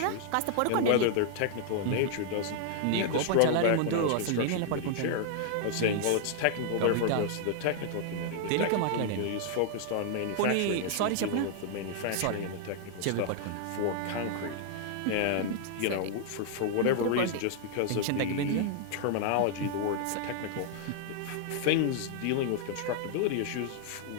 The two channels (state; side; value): different; both; correlation 0.00